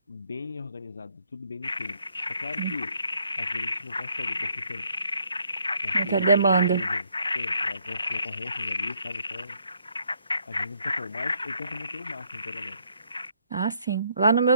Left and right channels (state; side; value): inverted; both; correlation -0.70